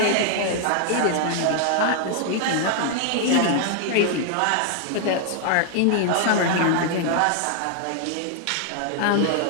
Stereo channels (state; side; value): different; both; correlation 0.00